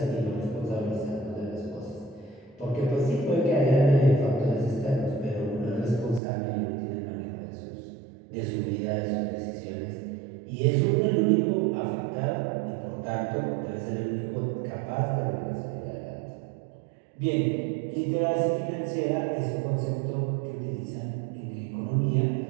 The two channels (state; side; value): drops out; left; at 6.2 s